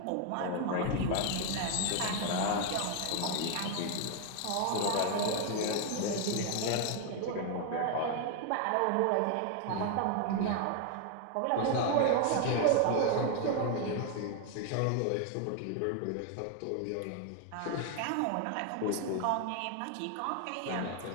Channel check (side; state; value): both; different; correlation 0.00